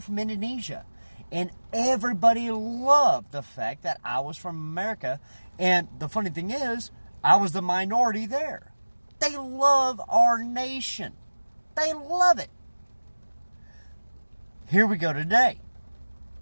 from Indonesia. And everybody loved the fact that I was from America. And the funny thing is, I was the minority there. They love our nation. They love it. Here we go today.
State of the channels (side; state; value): both; inverted; correlation -1.00